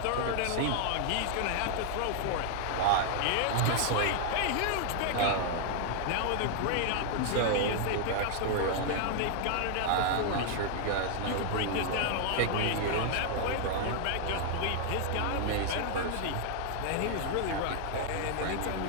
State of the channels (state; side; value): different; both; correlation 0.00